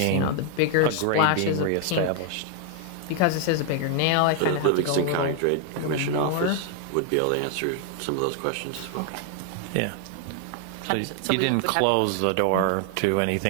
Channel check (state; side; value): different; both; correlation 0.00